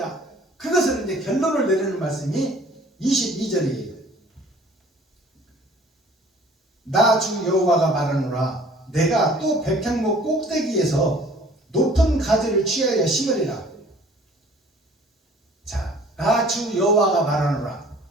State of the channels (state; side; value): normal; both; correlation 0.52